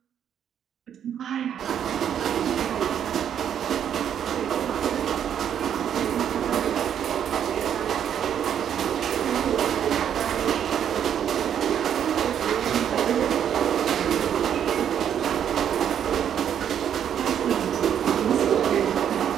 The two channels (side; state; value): left; quieter; 9.1 dB